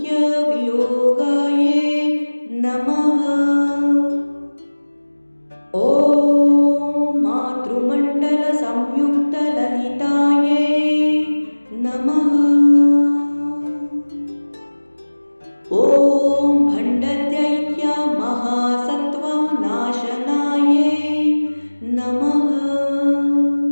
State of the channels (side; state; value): both; inverted; correlation -1.00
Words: वियोगाय नमः। ॐ मातृमण्डल संयुक्त ललिताय नमः। ॐ भण्डदैत्य महासत्त्व नाशनाय नमः।